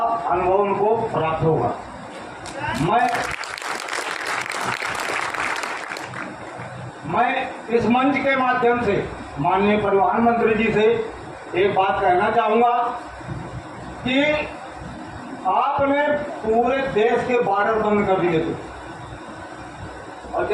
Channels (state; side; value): identical; both; correlation 1.00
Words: अनुभव उनको प्राप्त होगा। मैं इस मंच के माध्यम से माननीय परिवहन मंत्री जी से एक बात कहना चाहूंगा कि आपने पूरे देश के बॉर्डर बंद कर दिए थे, और